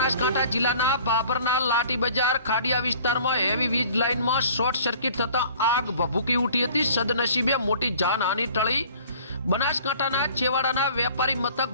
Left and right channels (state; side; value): inverted; both; correlation -0.50